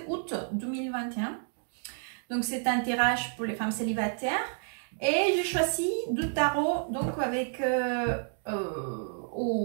2021. Donc c'est un tirage pour les femmes célibataires. Et j'ai choisi du tarot donc avec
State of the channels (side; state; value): left; silent; 58 dB below the other